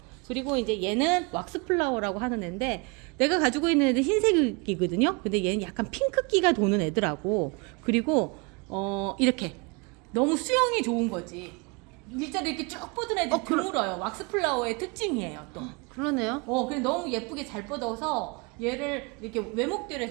그리고 이제 얘는 왁스 플라워라고 하는 애인데 내가 가지고 있는 애는 흰색이거든요. 근데 얘는 약간 핑크기가 도는 애더라고. 그리고 이렇게 너무 수영이 좋은 거지. 일자로 이렇게 쭉 뻗은 애들 드물어요. 왁스 플라워의 특징이에요, 또. 그러네요. 근데 너무 예쁘게 잘 뻗어서 얘를 이렇게 외목대로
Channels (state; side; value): quieter; left; 30.2 dB